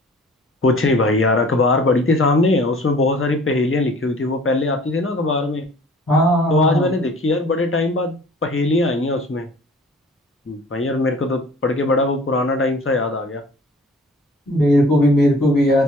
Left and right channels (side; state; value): both; normal; correlation 0.49